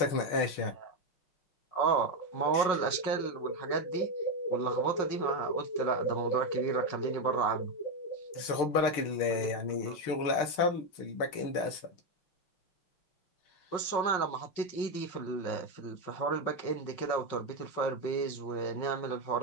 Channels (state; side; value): late; right; 5.5 ms